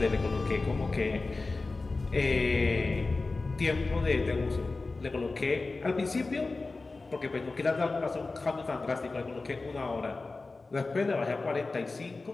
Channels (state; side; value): quieter; right; 3.6 dB